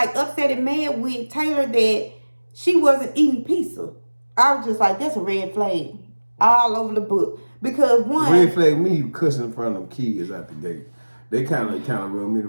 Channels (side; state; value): both; inverted; correlation -1.00